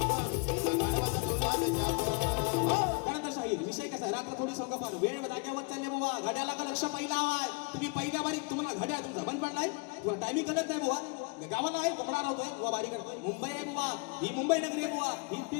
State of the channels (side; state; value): right; quieter; 31.9 dB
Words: दिला गाढवाचा तुला रे शाप. त्यानंतर शाहीर विषय कसा, रात्र थोडी सोंगा फार वेळ जागेवर चालले बुवा. घड्याला का लक्ष पहिला आवाज. तुम्ही पहिल्या बारीक तुम्हाला घड्याळ तुमचा बंद पडलाय, तुम्हाला टायमिंग कळत नाही बुवा. गावाला आहे कोंबडा होतोय बुवा, बारीक करतोय. मुंबई आहे बुवा, ही मुंबई नगरी आहे बुवा.